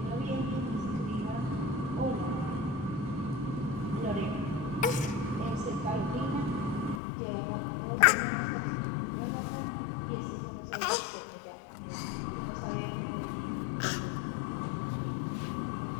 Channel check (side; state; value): right; drops out; at 7.0 s